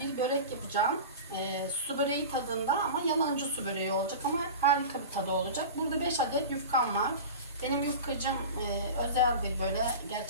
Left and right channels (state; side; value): inverted; both; correlation -0.31